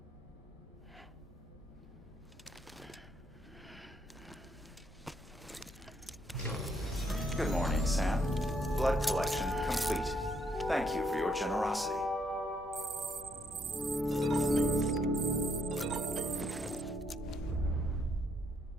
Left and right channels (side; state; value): both; normal; correlation 0.73